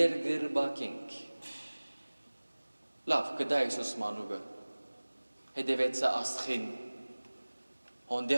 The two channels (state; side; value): inverted; both; correlation -1.00